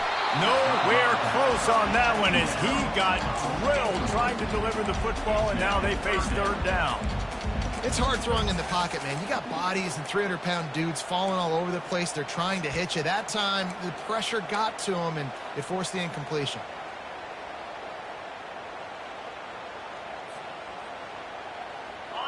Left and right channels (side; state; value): both; identical; correlation 1.00